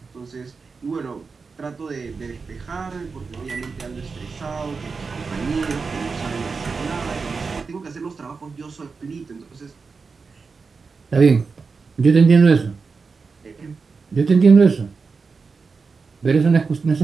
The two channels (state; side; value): quieter; left; 4.8 dB